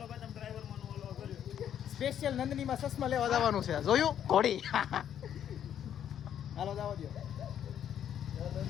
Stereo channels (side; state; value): right; quieter; 9.7 dB